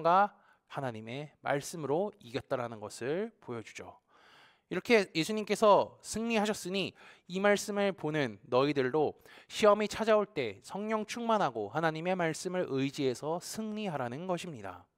하나님의 말씀으로 이겼다라는 것을 보여주죠. 이렇게 예수님께서 승리하셨으니 이 말씀을 보는 너희들도 시험이 찾아올 때 성령 충만하고 하나님의 말씀을 의지해서 승리하라는 것입니다.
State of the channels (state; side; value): identical; both; correlation 1.00